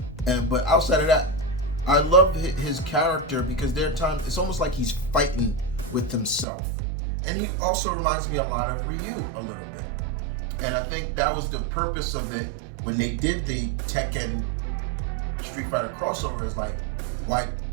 but outside of that, I love his character because there are times it's almost like he's fighting with himself, and he also reminds me a lot of Ryu a little bit, and I think that was the purpose of it when they did the Tekken Street Fighter crossover. Is like why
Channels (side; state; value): left; drops out; at 6.5 s